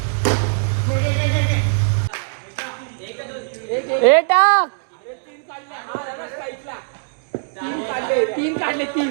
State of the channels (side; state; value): left; silent; digital silence